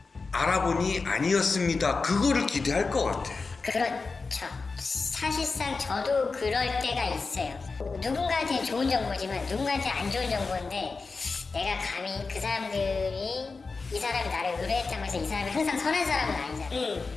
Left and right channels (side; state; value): right; quieter; 4.2 dB